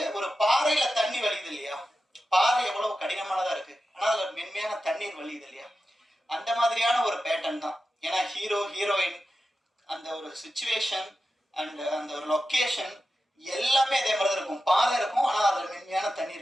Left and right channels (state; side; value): normal; both; correlation 0.92